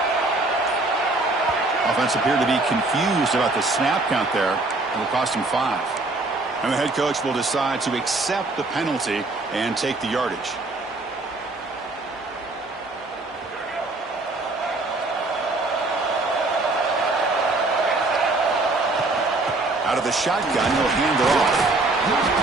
Offense appeared to be confused about the snap count there. It'll cost him 5. And the head coach will decide to accept the penalty and take the yardage. Out of the shotgun, he'll hand it off.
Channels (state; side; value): quieter; left; 3.1 dB